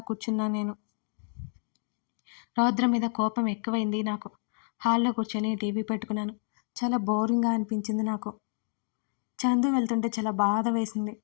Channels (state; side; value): silent; right; 58 dB below the other